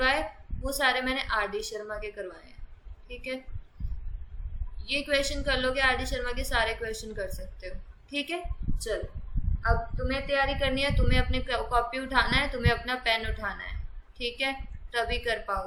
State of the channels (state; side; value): identical; both; correlation 1.00